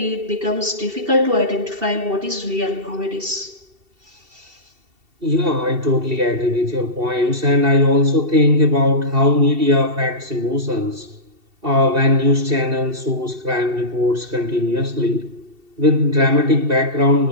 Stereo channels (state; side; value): late; left; 2.7 ms